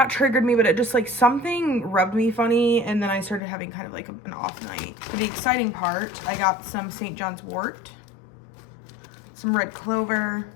triggered me, but it just like something rubbed me funny, and then I started having kind of like an off night. For the exciting part, I got some St. John's wort, some red clover,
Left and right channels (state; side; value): drops out; right; at 3.4 s